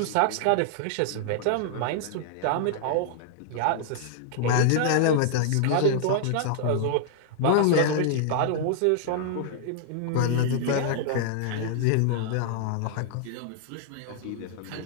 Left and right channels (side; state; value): both; different; correlation -0.01